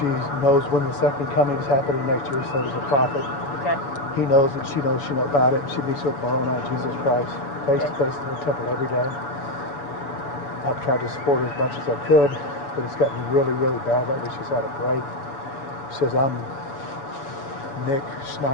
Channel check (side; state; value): right; late; 7.0 ms